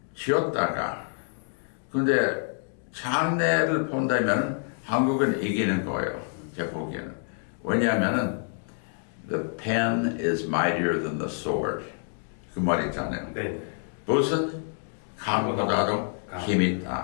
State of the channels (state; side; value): silent; right; 58 dB below the other